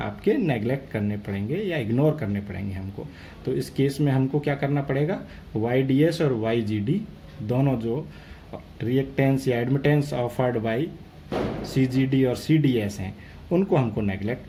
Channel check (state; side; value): identical; both; correlation 1.00